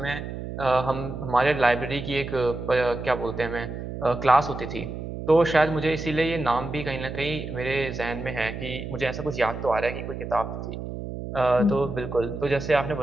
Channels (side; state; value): right; noise; hum, 7 dB below the sound